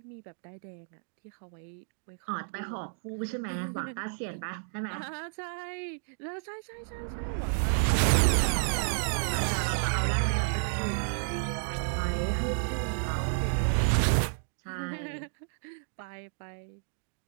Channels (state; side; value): silent; left; digital silence